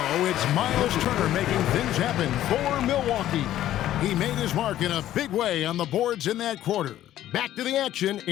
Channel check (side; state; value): right; quieter; 12.9 dB